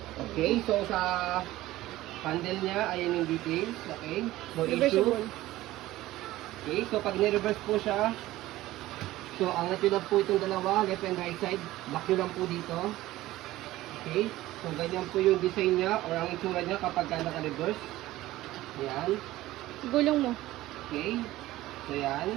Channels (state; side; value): quieter; left; 16.4 dB